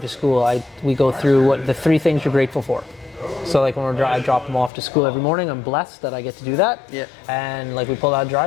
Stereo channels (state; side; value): drops out; right; at 4.7 s